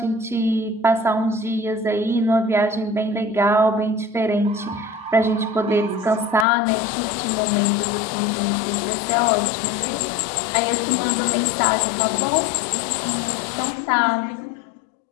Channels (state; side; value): drops out; right; at 6.5 s